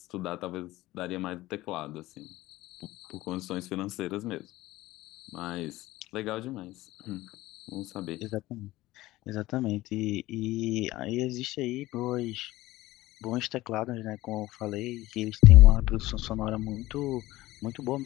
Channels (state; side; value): quieter; right; 17.6 dB